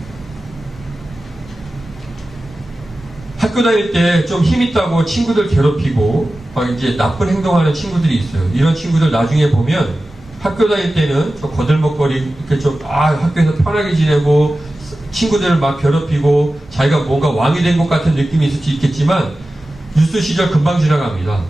학교 다닐 때 좀 힘있다고 친구들 괴롭히고 막 이제 나쁜 행동하는 친구들이 있어요. 이런 친구들 나중에 보면 학교 다닐 때는 좀 거들먹거리 이렇게 좀 학교에서 편하게 지내고 친구들을 막 괴롭히고 자기가 뭔가 왕이 된 것 같은 느낌이 있을 수 있겠지만 유스 시절 금방 지나갑니다.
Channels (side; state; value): both; normal; correlation 0.95